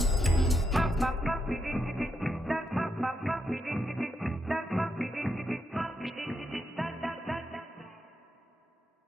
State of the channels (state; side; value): normal; both; correlation 0.82